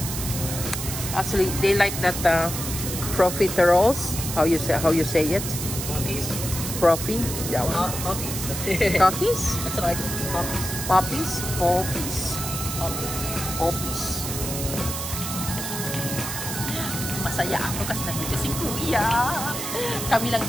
Actually, they like that profiteroles. How you say it? Puppies? Profi? Yeah. Puppies. Cookies? That's what I call puppies. Poppies? Poppies. Puppies. Poppies. Masaya ako kasi nandito si Kuya. Kami lang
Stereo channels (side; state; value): right; noise; hiss, 5 dB below the sound